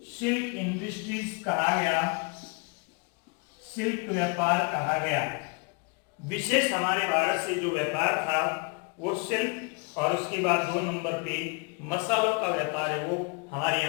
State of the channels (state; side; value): quieter; right; 32.5 dB